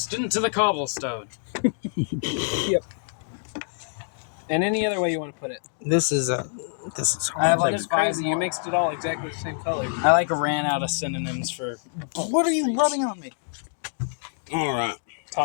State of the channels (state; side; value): silent; right; digital silence